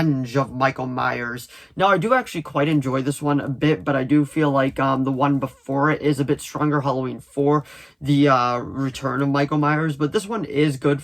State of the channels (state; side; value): identical; both; correlation 1.00